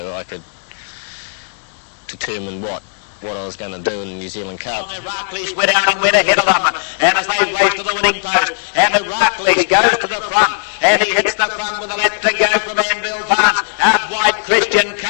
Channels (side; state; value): right; silent; digital silence